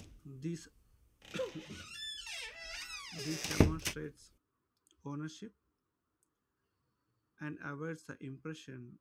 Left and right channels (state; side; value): identical; both; correlation 1.00